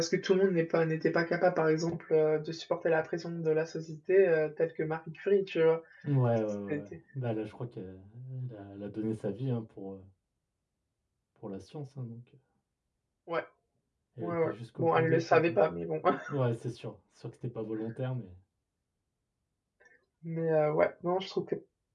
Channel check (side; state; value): both; identical; correlation 1.00